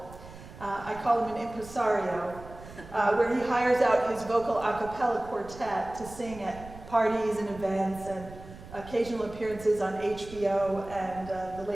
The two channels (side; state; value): right; noise; rumble, 16 dB below the sound